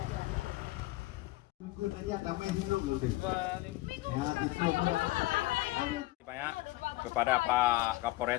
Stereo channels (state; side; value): quieter; right; 18.9 dB